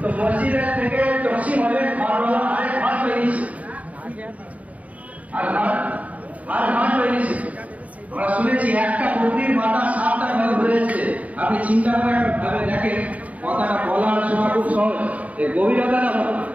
মসজিদের থেকে তসিম হলে ঘরওয়ালা আরেক ঘর তৈরিছে, আর ঘর তৈরিছে। আমরা শুনেছি একটা বকরির মাথা 7টা ঘর ঘুরেছে। আপনি চিন্তা করে ভাবে দেখেন, কথাটা বলার সময় খুব সহজ, গভীরতাটা হবে।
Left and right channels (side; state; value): left; late; 0.070 ms